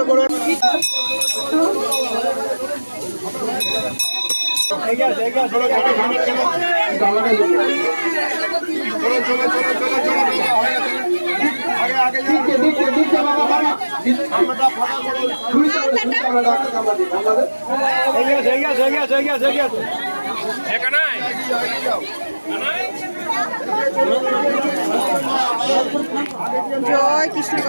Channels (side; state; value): both; inverted; correlation -1.00